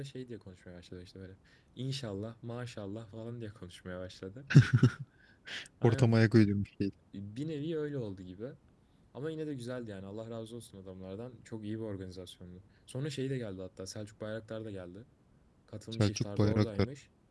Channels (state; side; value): identical; both; correlation 1.00